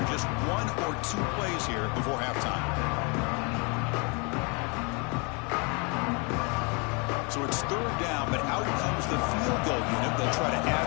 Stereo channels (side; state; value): right; quieter; 32.3 dB